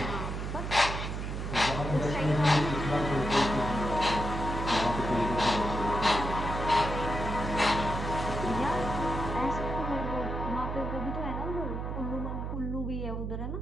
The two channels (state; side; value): noise; right; hum, 4 dB below the sound